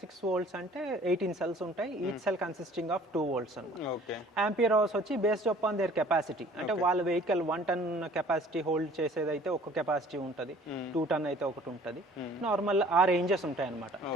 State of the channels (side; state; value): both; normal; correlation 0.52